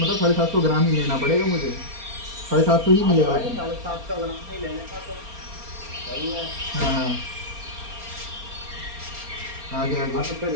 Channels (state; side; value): late; left; 4.3 ms